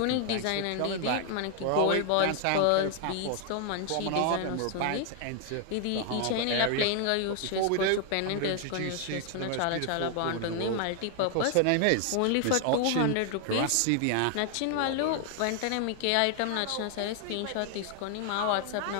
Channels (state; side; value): different; both; correlation 0.00